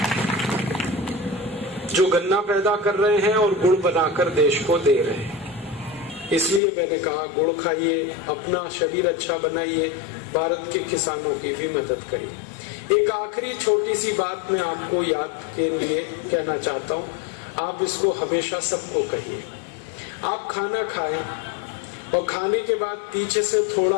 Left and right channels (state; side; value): drops out; right; at 6.6 s